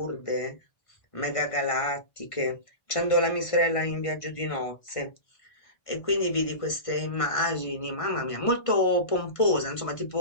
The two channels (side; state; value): right; late; 1.5 ms